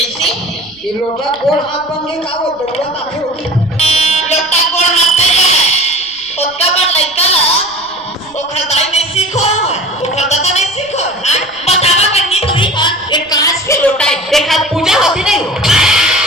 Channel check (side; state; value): right; noise; rumble, 30 dB below the sound